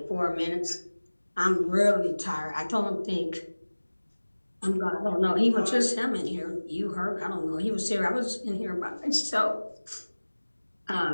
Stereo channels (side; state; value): both; inverted; correlation -1.00